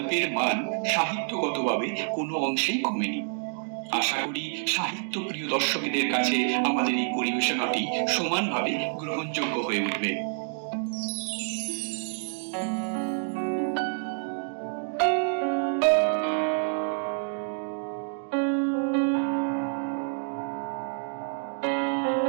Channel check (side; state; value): left; silent; digital silence